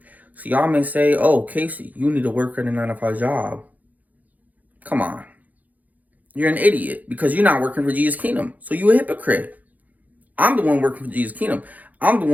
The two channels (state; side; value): late; left; 0.079 ms